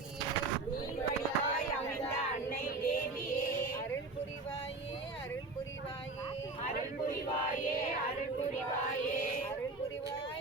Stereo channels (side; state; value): left; quieter; 3.4 dB